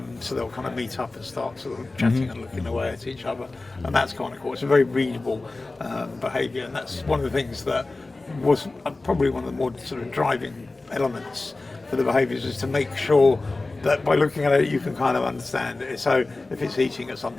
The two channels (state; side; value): quieter; right; 3.3 dB